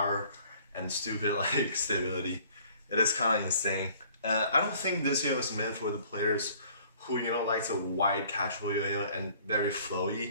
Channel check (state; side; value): inverted; both; correlation -0.55